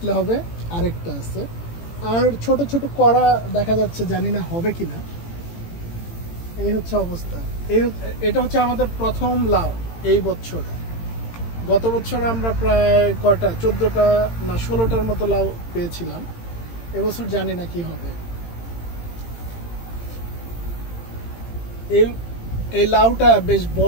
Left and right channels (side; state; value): right; late; 18 ms